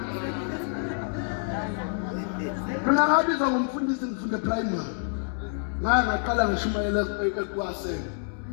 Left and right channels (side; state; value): right; silent; 56 dB below the other